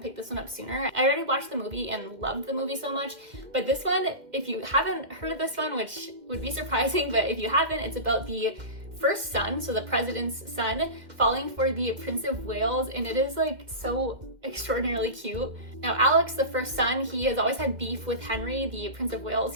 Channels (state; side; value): late; left; 2.1 ms